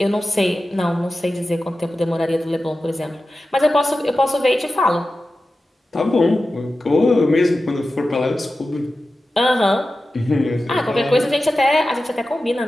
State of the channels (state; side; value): normal; both; correlation 0.93